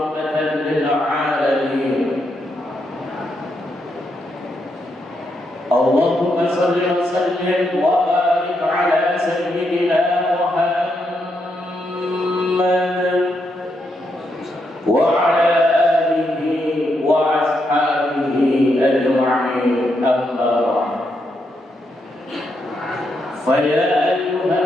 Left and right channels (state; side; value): normal; both; correlation 0.80